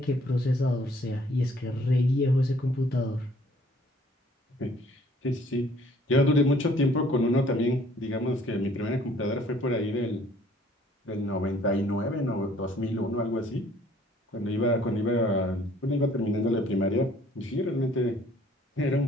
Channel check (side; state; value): both; normal; correlation 0.59